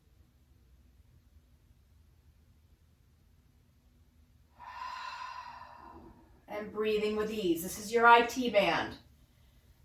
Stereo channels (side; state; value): both; identical; correlation 1.00